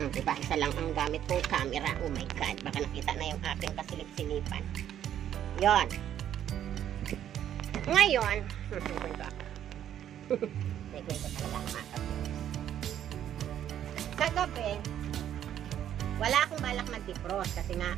Diba? Isa lang ang gamit kong camera. Oh my God. Baka nakita na yung aking kasilip-silipan. Yon. Ngayon, nagkwento talaga ang mga kagabi, wala akong balak mag-defrost kasi nga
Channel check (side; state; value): left; quieter; 10.5 dB